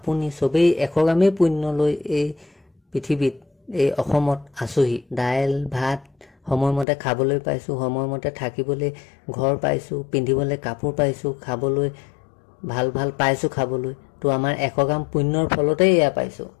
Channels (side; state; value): right; drops out; at 6.9 s